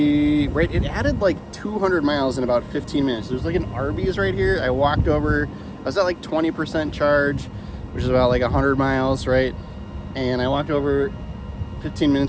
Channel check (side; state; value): both; identical; correlation 1.00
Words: added like 200 miles in about 15 minutes. There's like an Arby's right here. I walked over, I was at like 20% charge, which is about like 100 miles, right? And I walked over 15